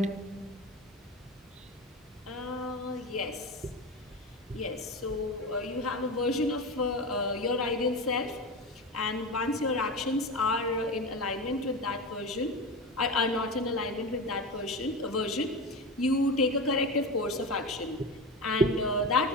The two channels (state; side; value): normal; both; correlation 0.24